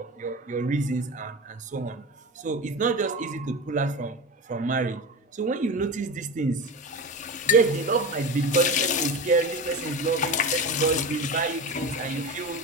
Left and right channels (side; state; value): both; normal; correlation 0.25